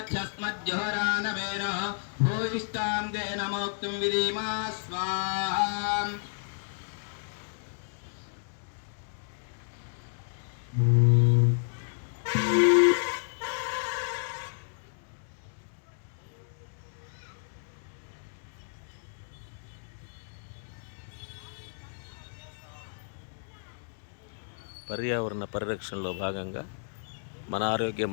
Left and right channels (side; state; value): right; silent; digital silence